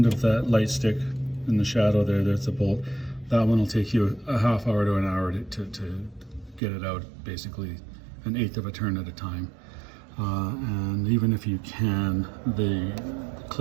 of that light stick in the shadow there, there's a bolt. That one will take you a half hour to an hour to get it out, basically an eighth of a turn at a time. And even if you can, the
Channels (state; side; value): drops out; left; at 6.6 s